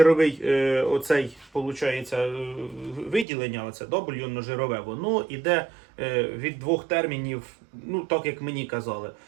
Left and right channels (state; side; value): drops out; left; at 3.2 s